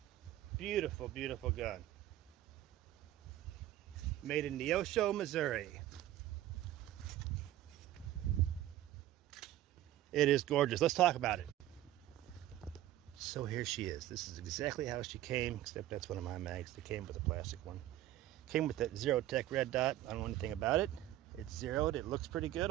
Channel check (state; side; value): quieter; left; 13.8 dB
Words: Beautiful, beautiful gun. Made in Neosho, Missouri. It is gorgeous. Let's talk about it. So here she is. This is exactly how she came, except that's one of my mags. They came with a plastic one. Came with that Zero Tech red dot. I don't know anything about it. It's zeroed. It looks pretty good